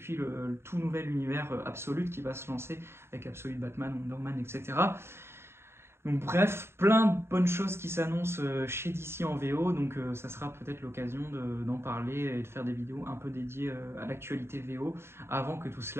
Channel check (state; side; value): late; left; 0.12 ms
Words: le tout nouvel univers Absolute qui va se lancer, avec Absolute Batman, Wonder Man, etc. Donc bref, plein de bonnes choses qui s'annoncent chez DC en VO, donc ça sera peut-être l'occasion d'en parler et de faire des vidéos un peu dédiées à l'actualité VO, avant que tout